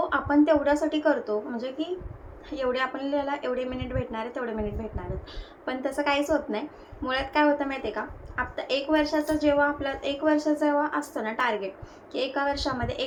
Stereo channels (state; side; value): identical; both; correlation 1.00